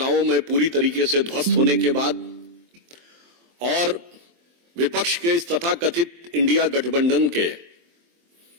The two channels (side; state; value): left; late; 23 ms